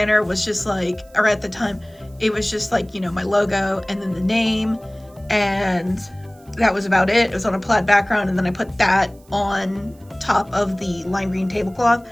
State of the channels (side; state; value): right; noise; hiss, 30 dB below the sound